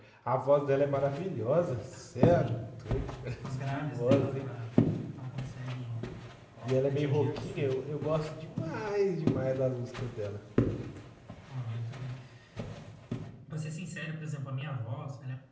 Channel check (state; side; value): identical; both; correlation 1.00